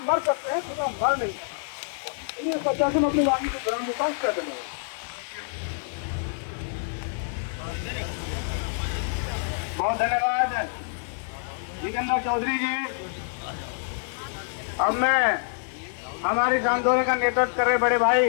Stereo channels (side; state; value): right; silent; digital silence